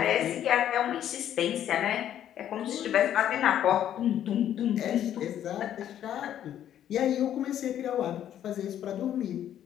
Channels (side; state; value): right; quieter; 10.7 dB